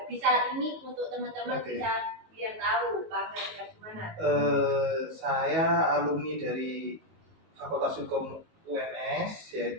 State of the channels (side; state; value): left; late; 19 ms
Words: Bisa ini untuk teman-teman bisa biar tahu Pak Angga tinggal di mana. Saya alumni dari Fakultas Hukum UNS,